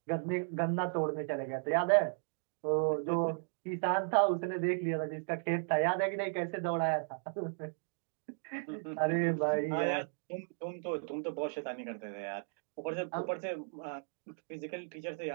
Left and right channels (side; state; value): left; silent; digital silence